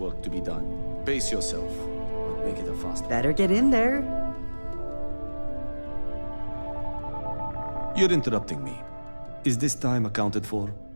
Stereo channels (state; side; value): inverted; both; correlation -1.00